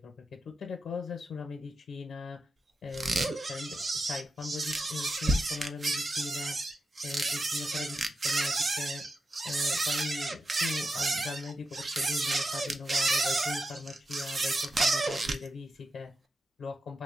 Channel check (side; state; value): both; normal; correlation 0.88